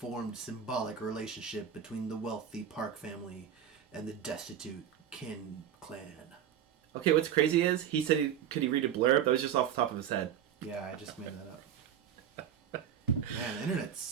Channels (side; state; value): left; quieter; 9.3 dB